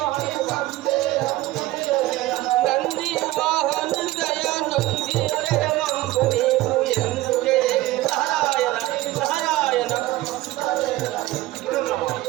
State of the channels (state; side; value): quieter; left; 17.3 dB